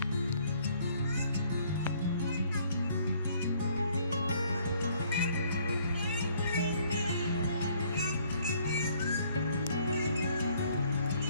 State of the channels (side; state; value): both; inverted; correlation -0.62